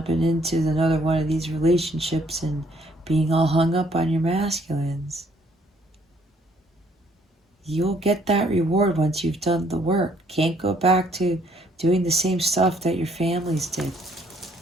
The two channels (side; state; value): both; normal; correlation 0.65